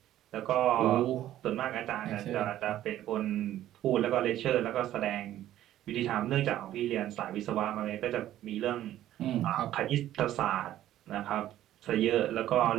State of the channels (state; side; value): quieter; left; 13.0 dB